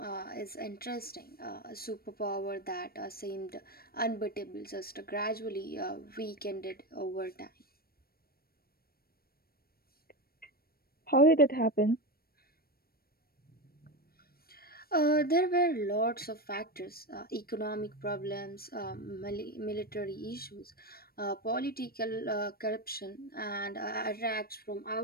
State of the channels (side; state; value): right; late; 0.44 ms